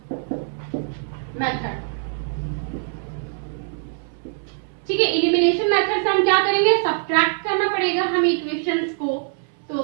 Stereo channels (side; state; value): left; silent; 63 dB below the other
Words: मेथड, ठीक है। एलिमिनेशन मेथड से हम क्या करेंगे, सब्ट्रैक्ट करना पड़ेगा हमें इक्वेशंस को। तो